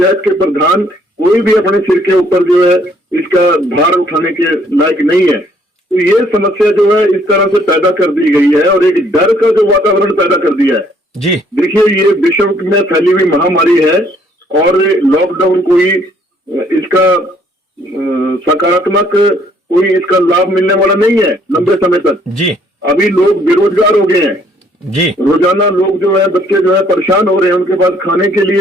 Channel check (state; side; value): normal; both; correlation 0.64